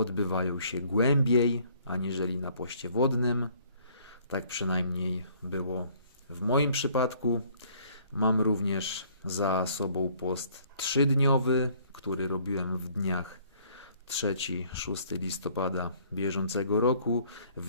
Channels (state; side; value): inverted; both; correlation -0.60